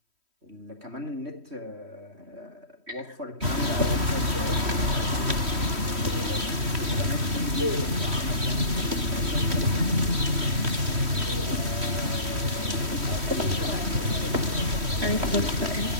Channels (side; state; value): left; late; 3.1 ms